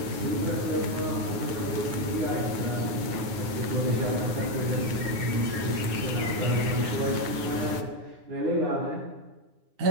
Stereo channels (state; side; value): late; left; 9.6 ms